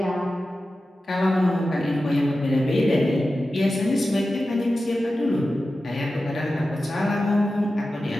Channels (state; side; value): normal; both; correlation 0.93